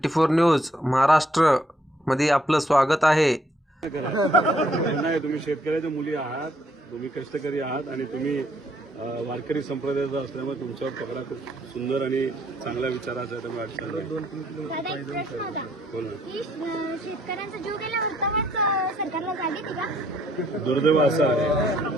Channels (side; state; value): both; normal; correlation 0.68